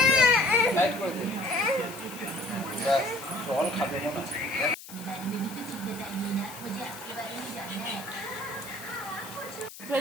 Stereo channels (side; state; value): left; noise; hiss, 15 dB below the sound